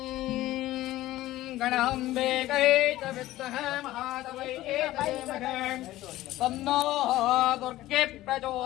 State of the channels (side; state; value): right; quieter; 15.9 dB